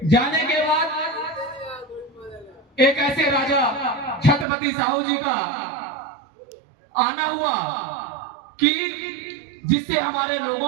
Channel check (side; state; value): left; drops out; at 4.5 s